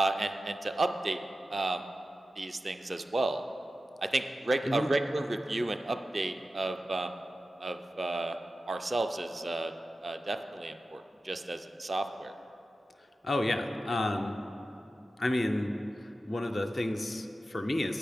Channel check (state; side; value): normal; both; correlation 0.94